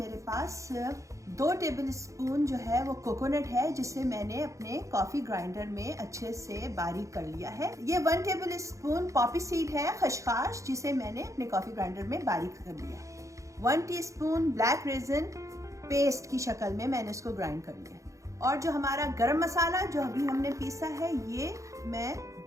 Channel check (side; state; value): left; late; 0.15 ms